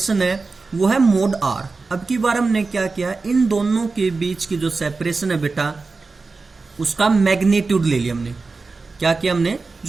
है वो है मोड R। अब की बार हमने क्या किया, इन दोनों के बीच की जो सेपरेशन है बेटा उसका मैग्नीट्यूड ले लिया हमने। क्या किया हमने,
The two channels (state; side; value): quieter; left; 4.0 dB